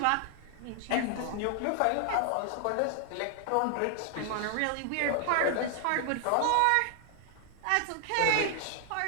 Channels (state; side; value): different; both; correlation 0.00